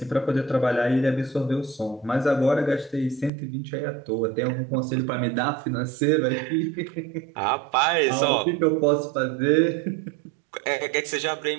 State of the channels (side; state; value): left; drops out; at 3.3 s